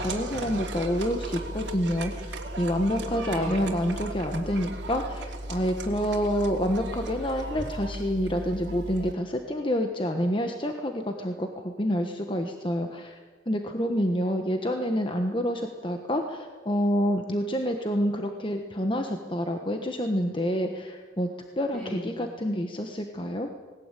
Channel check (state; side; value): normal; both; correlation 0.71